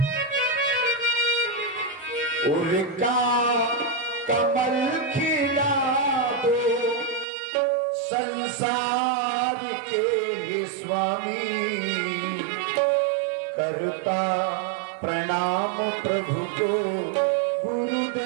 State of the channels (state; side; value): drops out; left; at 7.2 s